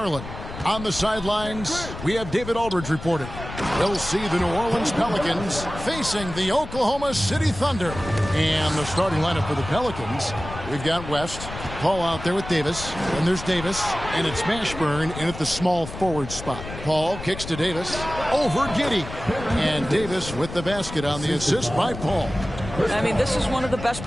On the sidelines, we have David Aldridge reporting. We'll see the New Orleans Pelicans facing the Oklahoma City Thunder. And the starting lineup for the Pelicans, we've got West, Paul out there with Davis, and there's Davis, and it's Mashburn in at the small forward spot. Paul kicks to Davis, over Giddey, and Davis with the basket on the assist by Paul. I mean, this is one of the best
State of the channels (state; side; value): noise; left; rumble, 11 dB below the sound